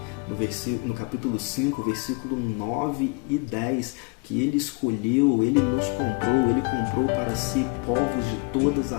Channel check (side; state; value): right; quieter; 30.2 dB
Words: no capítulo 5, versículo 9 e 10, que ele escolheu, ele nos comprou, ele comprou para si povos de todas